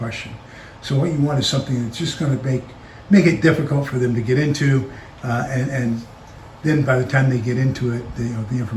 So what you want is something that's just going to make it difficult for them to get into, and then by the time they get into it, the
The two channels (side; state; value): both; identical; correlation 1.00